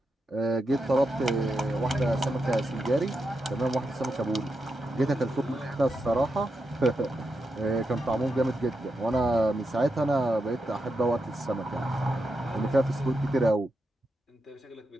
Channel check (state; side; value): normal; both; correlation 0.86